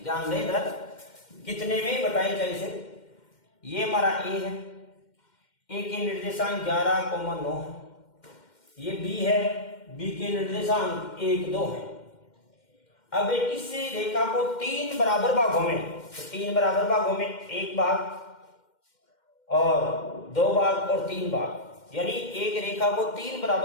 ध्यान दें, इधर कितने में बताई जाए इसे। ये हमारा ए है, ए के निर्देशांक 11,9 है। ये बी है, बी के निर्देशांक 1, 2 है। अब इस रेखा को 3 बराबर भागों में, तो 3 बराबर भागों में 1 भाग और 2 भाग और 3 भाग, यानी एक रेखा को 3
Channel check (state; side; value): late; right; 2.1 ms